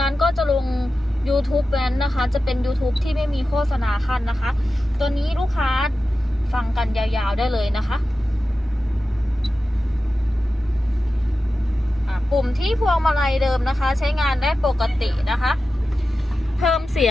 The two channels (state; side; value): normal; both; correlation 0.93